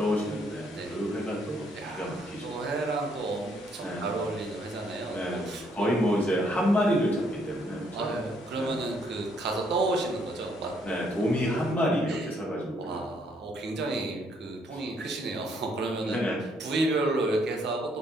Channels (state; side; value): normal; both; correlation 0.70